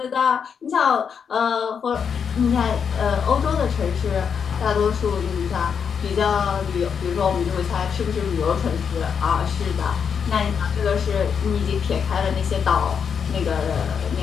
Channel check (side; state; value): right; quieter; 6.9 dB